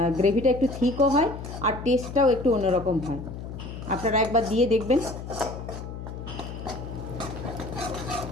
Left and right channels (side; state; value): left; noise; hum, 9 dB below the sound